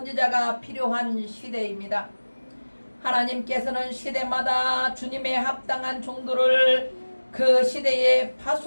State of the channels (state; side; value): inverted; both; correlation -1.00